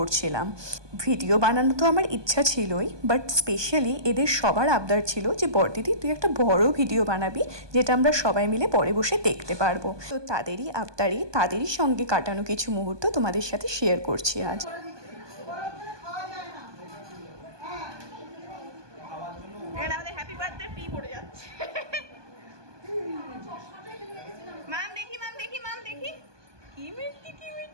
ভিডিও বানানো তো আমার ইচ্ছা ছিলই, বাট স্পেশালি এদের সবার আবদার ছিল যে বার্থডেতে তুই একটা বড় ভিডিও বানাবি, যেটা আমরা সবাই মিলে পরে বসে দেখতে পারবো। তো তাদেরই আবদারে, তাদেরই সঙ্গে কাটানো কিছু মুহূর্ত তোমাদের সাথে শেয়ার করছি আজ। আমাদের হ্যাপি বার্থডে ফি পড়ে যাচ্ছে। মাম দেখি কি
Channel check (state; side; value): late; left; 1.2 ms